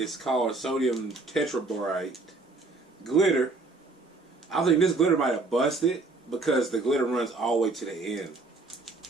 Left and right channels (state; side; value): quieter; left; 3.5 dB